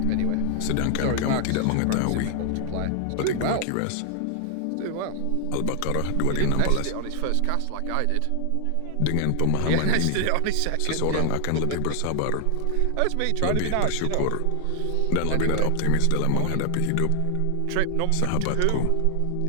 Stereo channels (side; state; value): both; different; correlation 0.00